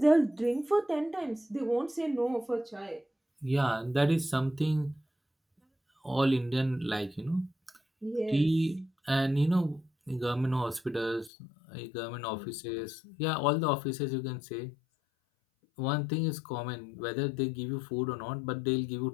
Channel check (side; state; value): right; drops out; at 11.3 s